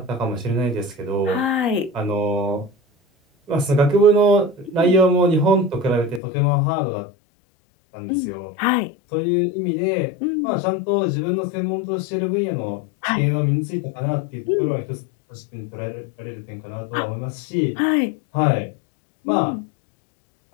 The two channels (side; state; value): right; drops out; at 6.2 s